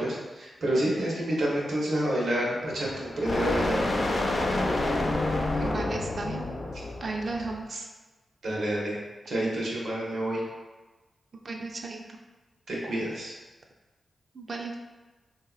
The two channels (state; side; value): normal; both; correlation 0.88